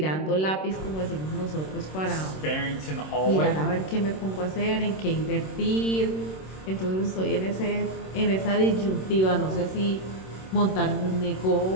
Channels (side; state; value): right; late; 26 ms